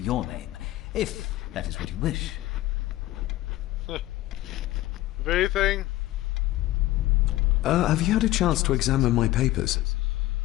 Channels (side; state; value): right; quieter; 16.2 dB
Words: name, if that is what you wish. Anything? Have you had a chance to examine my papers?